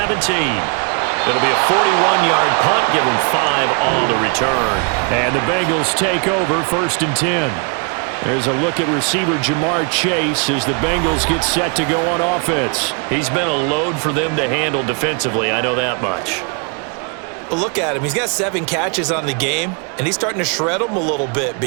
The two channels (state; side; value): quieter; left; 37.1 dB